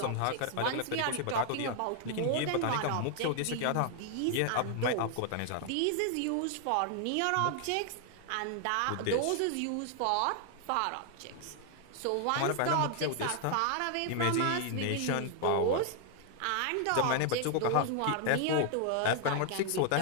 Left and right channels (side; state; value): both; different; correlation 0.00